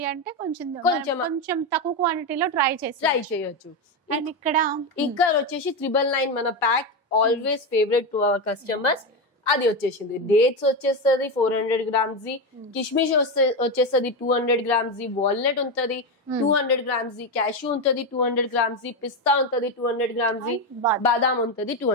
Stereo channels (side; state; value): both; normal; correlation 0.12